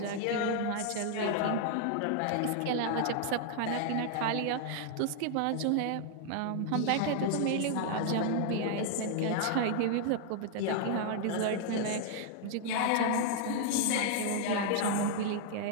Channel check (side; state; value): both; different; correlation 0.00